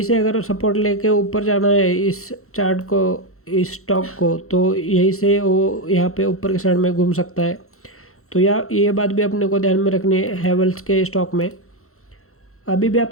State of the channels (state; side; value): late; right; 0.63 ms